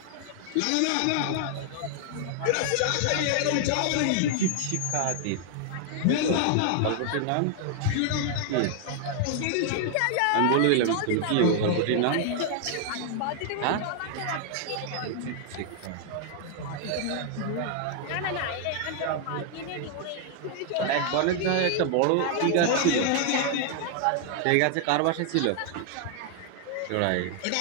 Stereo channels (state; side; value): different; both; correlation 0.00